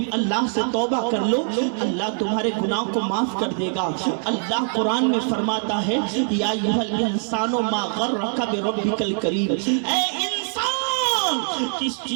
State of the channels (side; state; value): left; silent; 57 dB below the other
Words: اللہ سے توبہ کر لو، اللہ تمہارے گناہ کو معاف کر دے گا۔ اللہ قرآن میں فرماتا ہے یا ایھا الانسان ما غرک بربک الکریم، اے انسان کس